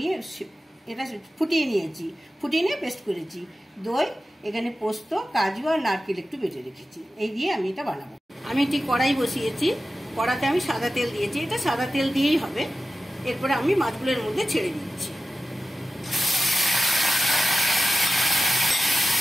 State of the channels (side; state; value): both; normal; correlation 0.94